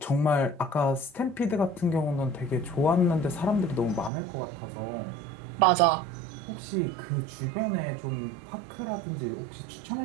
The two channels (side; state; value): left; drops out; at 4.1 s